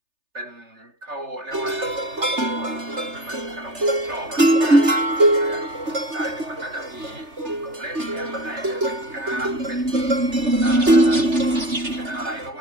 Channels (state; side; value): late; left; 3.3 ms